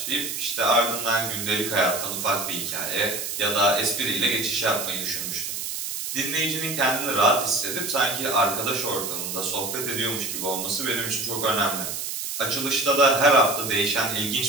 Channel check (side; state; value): right; noise; hiss, 4 dB below the sound